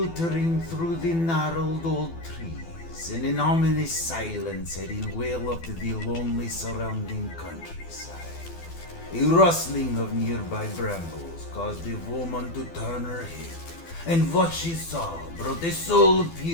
through the gnarled old trees, and an ominous silence had enveloped the lonely surrounding countryside. A rustling of nearby brambles caused the woman to turn her head, and what she saw brought a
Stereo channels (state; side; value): late; right; 12 ms